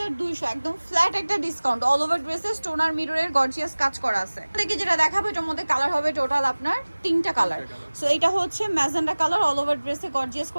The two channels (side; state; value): both; inverted; correlation -1.00